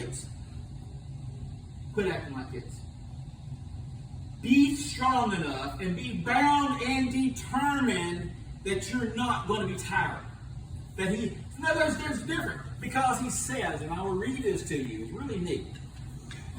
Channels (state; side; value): identical; both; correlation 1.00